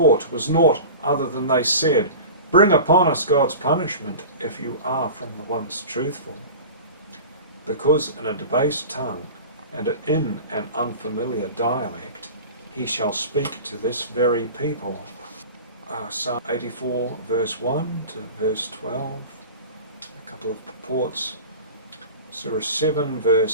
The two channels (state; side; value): inverted; both; correlation -0.35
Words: was naught other than they said, bring upon us God's punishment if you are from the ones truthful. Because in a debased tongue and in an unfamiliar dialect he shall speak to this very people. Psalm 84 verse 1 to verse 12, a couple of purports. Surah 7